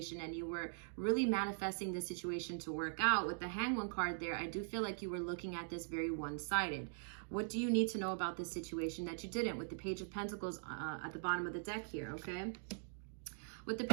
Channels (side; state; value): left; silent; digital silence